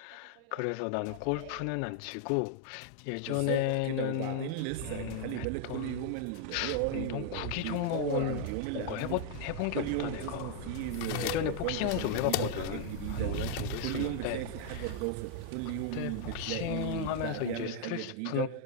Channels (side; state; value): both; different; correlation 0.00